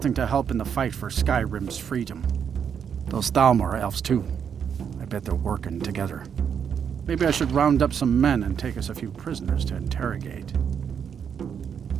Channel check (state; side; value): quieter; left; 7.6 dB